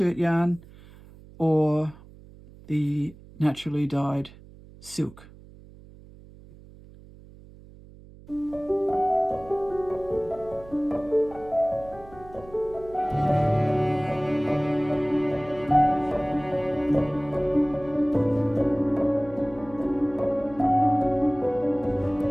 yarn or the naturally dyed silk.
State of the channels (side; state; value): right; noise; hum, 21 dB below the sound